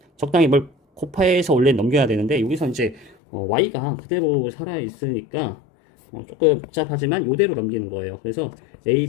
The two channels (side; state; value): right; drops out; at 3.2 s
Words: 적당히 뭘 곱해서 원래 넘겨야 되는데 여기서 이제 Y가 그대로 살아있으니까 조금 복잡하지만 이대로 넘기는 거예요. 그래서